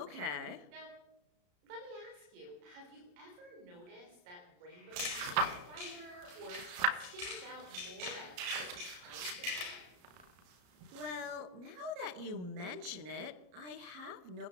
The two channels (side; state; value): left; late; 33 ms